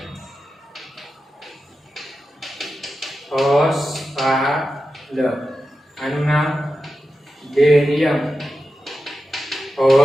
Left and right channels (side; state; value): both; normal; correlation 0.91